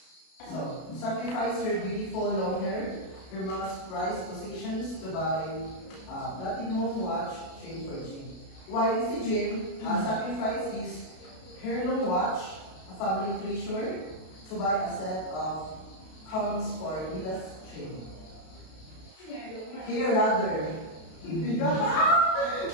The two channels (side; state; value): right; late; 32 ms